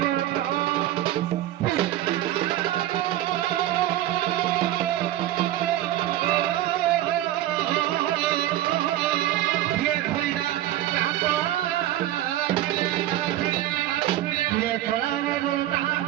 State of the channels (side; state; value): left; quieter; 13.7 dB